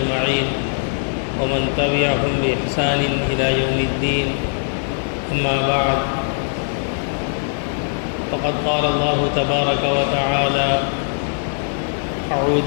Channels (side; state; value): right; silent; 62 dB below the other